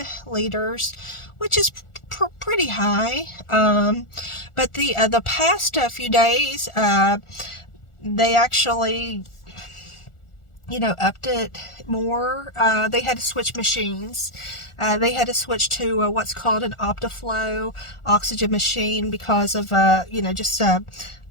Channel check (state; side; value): late; right; 1.4 ms